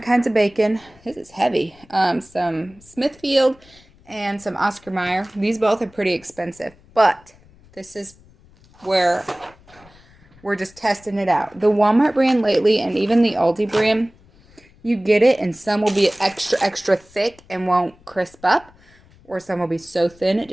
kinds of bacon. This is heavy. Some Smithfield and some Oscar Mayer. These both are pretty expensive, but this is where we're just testing it out. The Walmart brand lately, and even the Aldi brand, you get it and some will be extra thick and won't crisp up, or some will be so thin it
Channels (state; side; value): noise; left; rumble, 27 dB below the sound